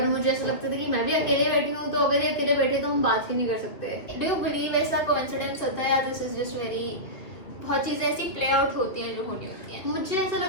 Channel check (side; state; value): right; late; 2.9 ms